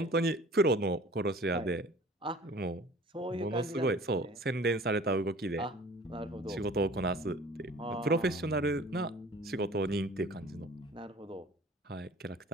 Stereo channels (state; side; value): normal; both; correlation 0.47